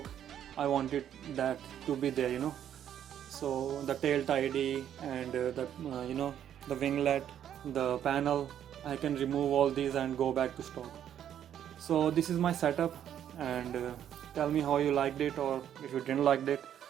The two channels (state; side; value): quieter; left; 10.0 dB